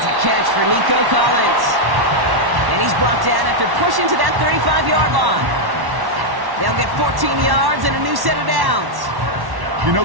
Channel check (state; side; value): late; left; 1.1 ms